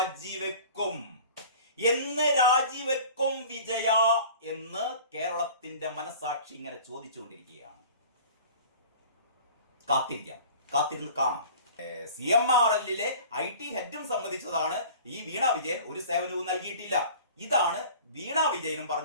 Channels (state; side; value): inverted; both; correlation -0.43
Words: വിജയ എന്ന് കേരളത്തിന്റെ മനസാക്ഷി ഇങ്ങനെ ചോദിച്ചുകൊണ്ടിരിക്കുകയാണ്. കാത്തിരുന്ന് കാണാം. CMRL IT ഹെഡും സംബന്ധിച്ചതാണ് ഈ വീണ വിജയൻ ഒരു സേവനവും നൽകിയിട്ടില്ല. ഇതാണ് വീണ വിജയനും